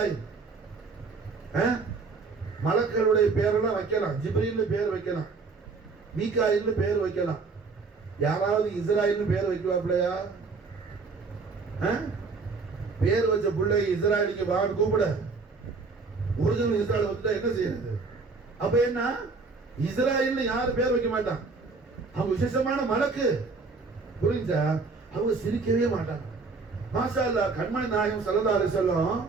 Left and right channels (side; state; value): left; quieter; 4.3 dB